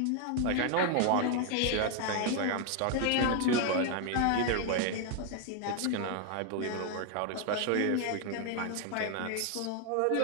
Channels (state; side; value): different; both; correlation 0.00